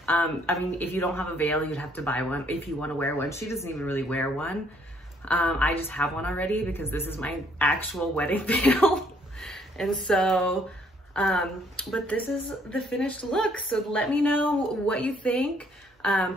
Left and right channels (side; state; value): both; normal; correlation 0.65